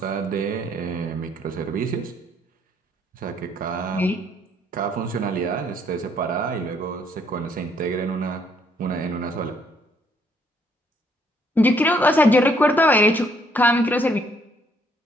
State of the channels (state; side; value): normal; both; correlation 0.67